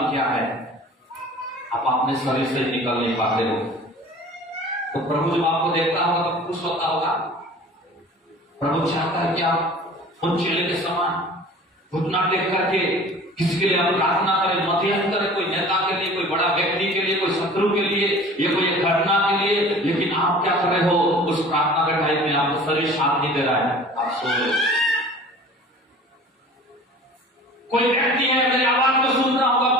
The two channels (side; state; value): both; normal; correlation 0.44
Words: क्या है, आप अपने शरीर से निकल नहीं पाते हो। तो प्रभु जब आपको देखता होगा तो खुश होता होगा। प्रभु चाहता है कि आप उन चेले के समान घुटना टेक करके किसी के लिए आप प्रार्थना करें, मध्यस्थ करें, कोई नेता के लिए, कोई बड़ा व्यक्ति के लिए, कोई शत्रु के लिए, या कोई एक घटना के लिए। लेकिन आप क्या कर रहे हो, उस प्रार्थना के टाइम में आपको शरीर साथ नहीं दे रहा है, आप सो रहे हो। कोई व्यक्ति है मेरी आवाज को सुन रहा होगा